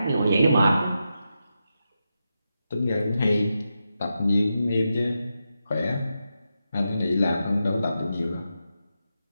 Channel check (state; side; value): inverted; both; correlation -0.87